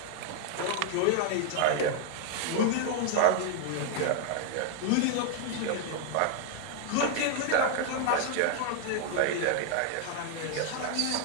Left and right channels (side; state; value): both; different; correlation 0.00